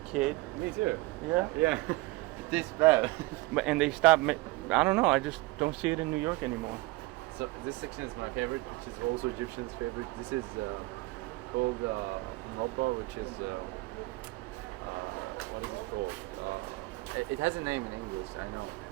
Me too. Yeah? Yeah. It tastes bad. And they stopped. I don't know. I just don't see it in New York anymore. So this section is my favorite, which is also Egyptian's favorite. This is called Malpa, which is what is it called? It has a name in English. I know.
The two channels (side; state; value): left; quieter; 21.4 dB